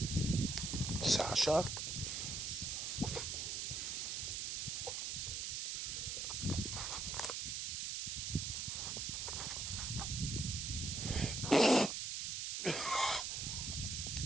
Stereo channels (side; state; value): right; noise; hiss, 2 dB below the sound